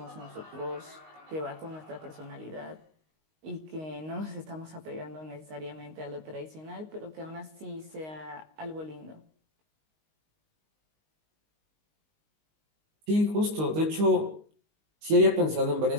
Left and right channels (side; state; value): left; late; 19 ms